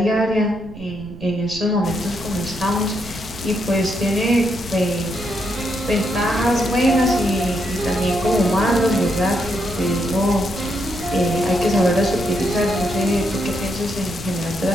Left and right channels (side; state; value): right; noise; rumble, 17 dB below the sound